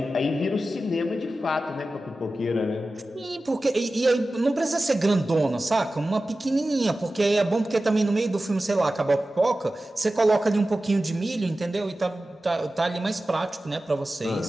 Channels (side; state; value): both; normal; correlation 0.95